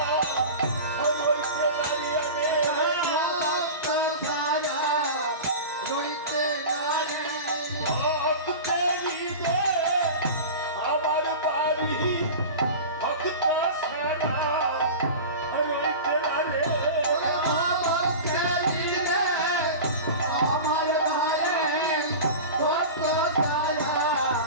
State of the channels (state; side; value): inverted; both; correlation -0.31